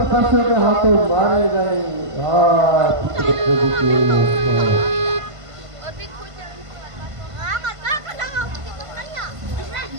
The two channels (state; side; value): late; left; 1.5 ms